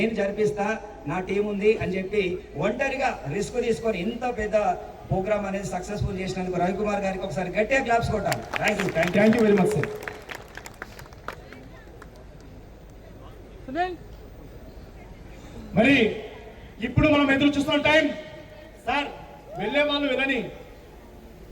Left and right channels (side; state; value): both; identical; correlation 1.00